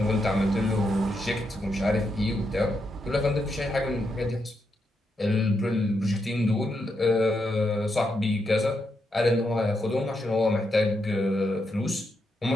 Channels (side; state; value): both; normal; correlation 0.82